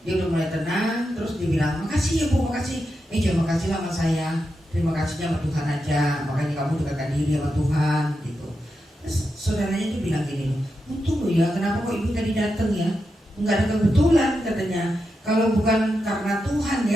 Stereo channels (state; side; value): normal; both; correlation 0.87